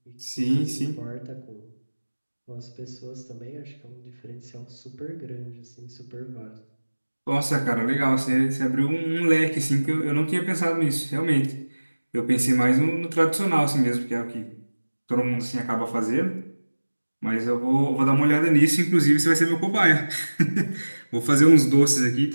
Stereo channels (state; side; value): inverted; both; correlation -1.00